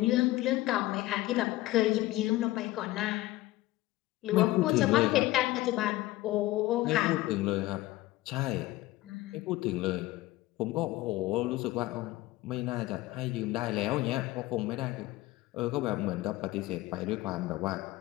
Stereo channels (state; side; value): quieter; right; 17.6 dB